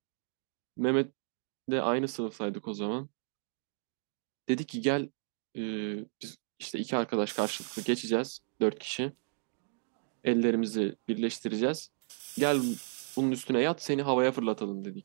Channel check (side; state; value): left; silent; 56 dB below the other